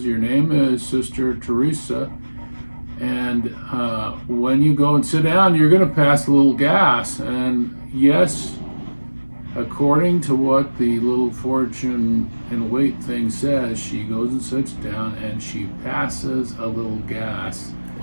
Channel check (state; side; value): inverted; both; correlation -1.00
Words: "Your name is Sister Teresa, and when you go and sit down, you're going to pass a little gas." And yes, according to what the little fortune and weight thing says, she goes and sits down and she passes a little gas.